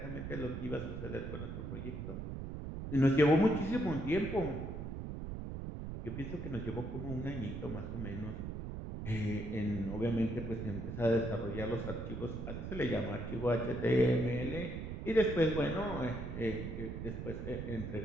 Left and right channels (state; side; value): noise; right; rumble, 6 dB below the sound